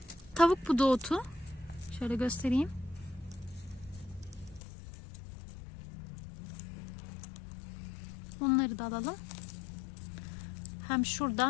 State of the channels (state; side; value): drops out; right; at 4.6 s